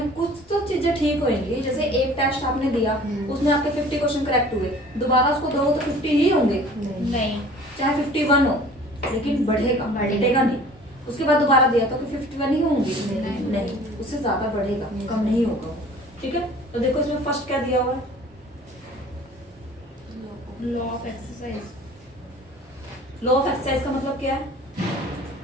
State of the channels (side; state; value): both; normal; correlation 0.48